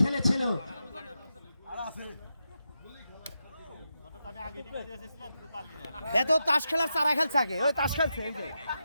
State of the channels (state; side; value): inverted; both; correlation -0.87